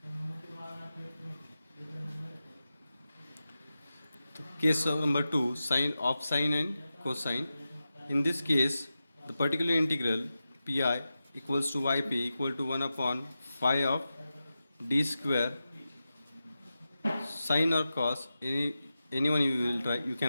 case number 2, sine and cosine. In this case, the particular integral pi equals to yp equal to 1 upon phi of d square sine or cos, anyone you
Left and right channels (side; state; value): both; inverted; correlation -0.92